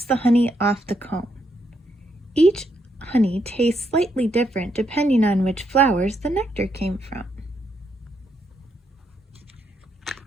the honey off the comb. Each honey tastes slightly different depending on which flowers the nectar came from.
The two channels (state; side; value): normal; both; correlation 0.77